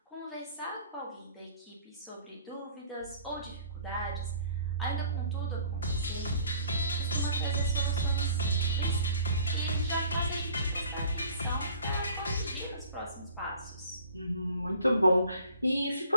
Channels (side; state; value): both; inverted; correlation -0.52